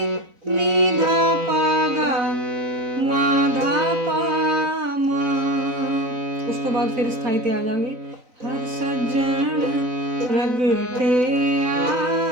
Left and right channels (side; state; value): left; late; 4.0 ms